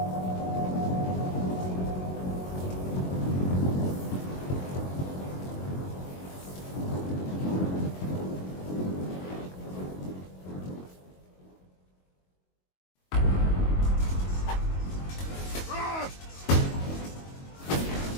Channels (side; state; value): right; late; 22 ms